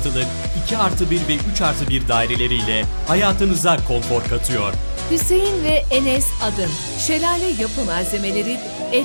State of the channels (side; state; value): both; inverted; correlation -1.00